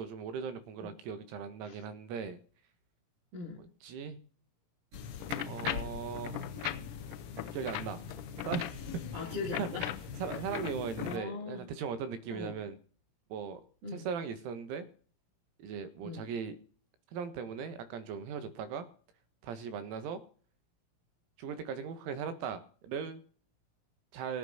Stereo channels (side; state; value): left; late; 17 ms